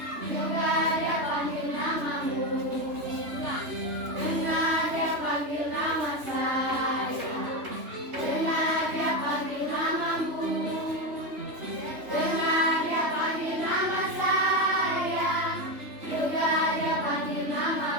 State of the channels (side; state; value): left; late; 3.2 ms